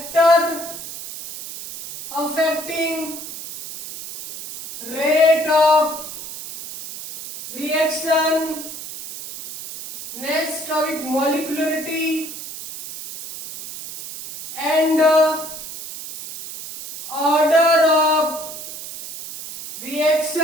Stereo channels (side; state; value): right; noise; hiss, 11 dB below the sound